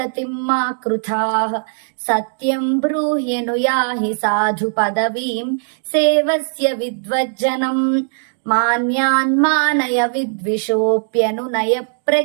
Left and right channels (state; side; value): silent; left; digital silence